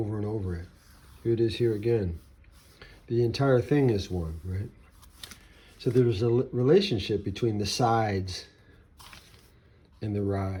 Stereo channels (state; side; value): identical; both; correlation 1.00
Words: and over it. Here it is here again. The entire thing is one, right? So there's a relationship between the sides and the